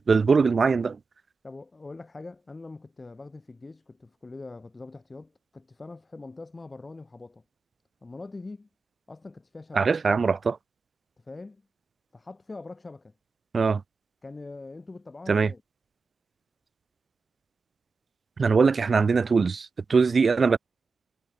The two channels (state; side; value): quieter; left; 4.5 dB